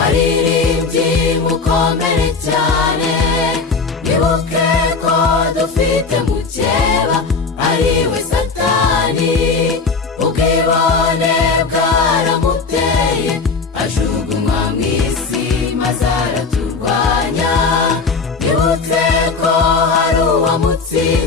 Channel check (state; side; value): quieter; right; 4.5 dB